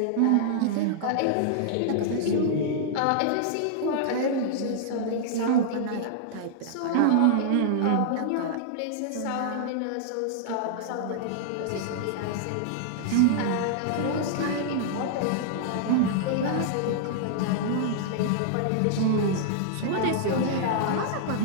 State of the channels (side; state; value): both; different; correlation -0.01